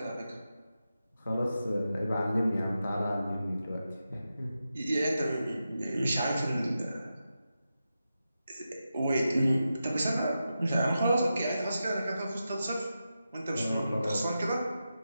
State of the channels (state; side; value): inverted; both; correlation -0.90